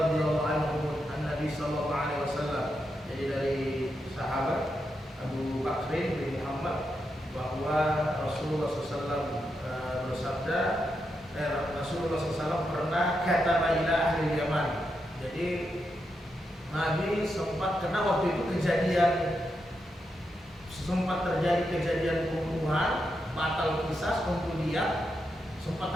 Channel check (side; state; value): both; normal; correlation 0.84